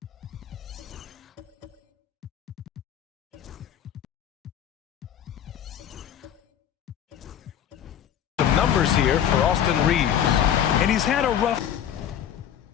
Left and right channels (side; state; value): right; quieter; 9.7 dB